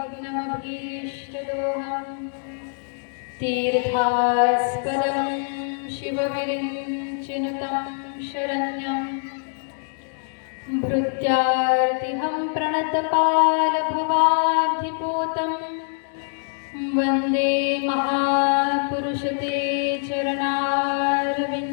तीर्थास्पदं शिवविरिञ्चिनुतं शरण्यं भृत्यार्तिहं प्रणतपालभवाब्धिपूतं वन्दे महापुरुषते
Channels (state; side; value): silent; right; 63 dB below the other